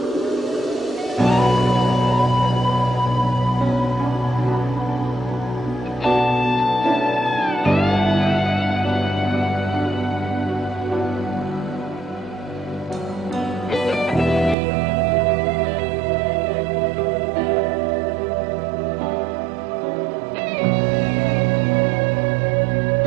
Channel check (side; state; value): left; drops out; at 14.6 s